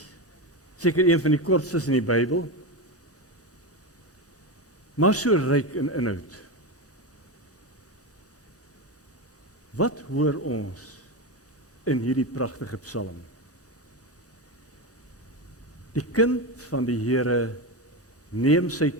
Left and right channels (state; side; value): normal; both; correlation 0.17